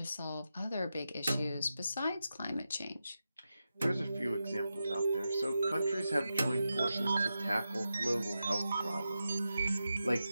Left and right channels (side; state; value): both; inverted; correlation -0.90